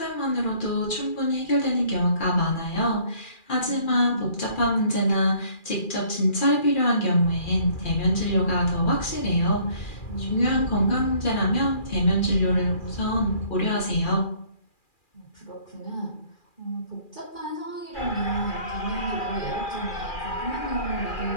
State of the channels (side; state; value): right; late; 2.4 ms